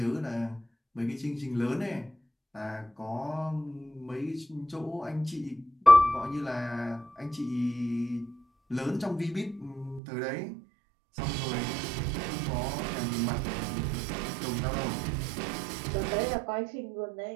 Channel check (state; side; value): drops out; left; at 10.0 s